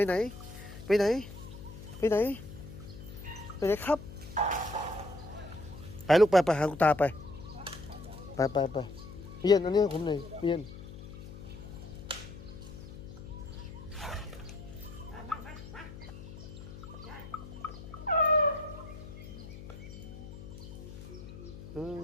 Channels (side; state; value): left; noise; hum, 13 dB below the sound